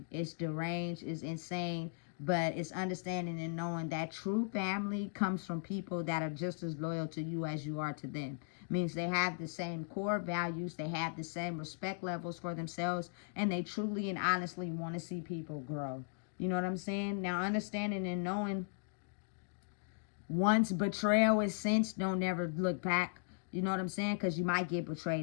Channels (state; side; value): silent; right; digital silence